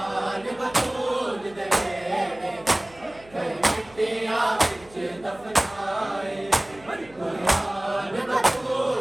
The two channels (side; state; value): right; noise; hum, 25 dB below the sound